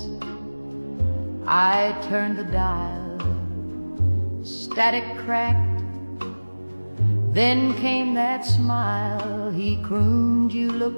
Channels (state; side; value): inverted; both; correlation -1.00